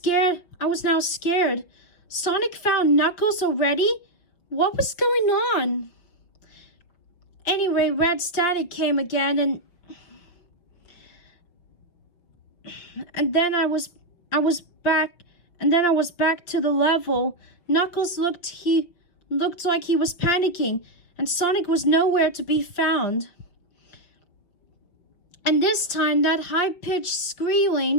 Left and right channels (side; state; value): right; late; 6.0 ms